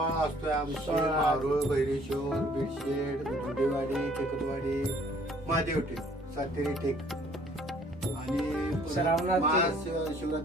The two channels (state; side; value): normal; both; correlation 0.58